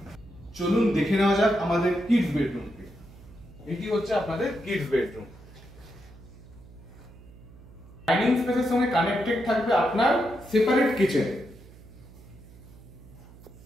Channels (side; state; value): right; noise; hum, 20 dB below the sound